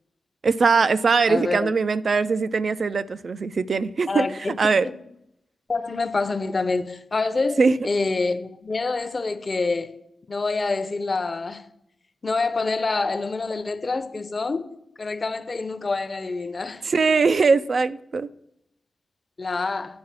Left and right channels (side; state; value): both; normal; correlation 0.89